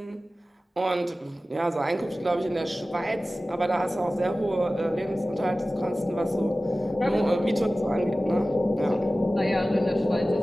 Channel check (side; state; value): both; normal; correlation 0.96